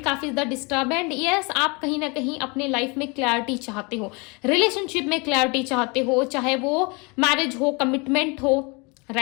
काफी ज्यादा डिस्टर्ब है। एंड यस, आप कहीं ना कहीं अपने लाइफ में क्लैरिटी चाहते हो, रिलेशनशिप में क्लैरिटी चाहते हो, चाहे वो मैरिज हो, कमिटमेंट हो,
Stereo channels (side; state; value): right; quieter; 29.6 dB